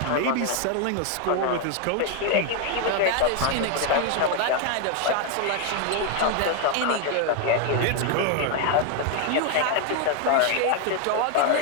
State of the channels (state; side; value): different; both; correlation 0.01